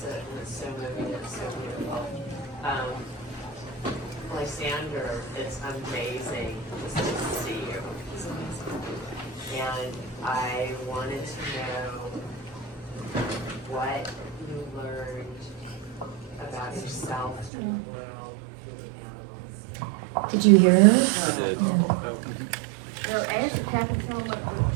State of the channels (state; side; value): drops out; left; at 17.5 s